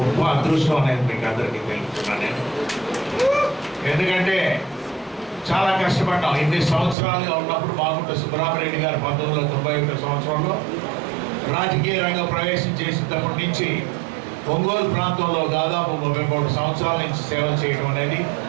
అదృష్టం అనేది మీకు అందరికీ తెలుపుతున్నాను నేను. ఎందుకంటే చాలా కష్టపడ్డాం. ఇన్ని సంవత్సరాలుగా ఉన్నప్పుడు మాగుంట సుబ్బరామరెడ్డి గారు 1991 సంవత్సరంలో రాజకీయ రంగం ప్రవేశం చేసినప్పటి నుంచి ఒంగోలు ప్రాంతంలో దాదాపు 33 సంవత్సరాల నుంచి సేవ చేయడం అనేది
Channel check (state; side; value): drops out; left; at 7.0 s